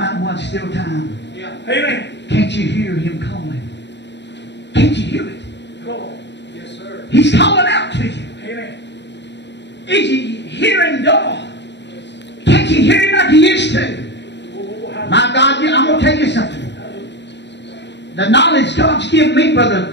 One Still Time. Amen. Can't you hear him calling? Can't you hear it? Come on. Yes, sir. He's calling out to you. Amen. Is you hearing God? Can't you hear him like you used to? My God, I'm going to tell you something. The knowledge God's given me,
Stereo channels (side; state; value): right; late; 0.51 ms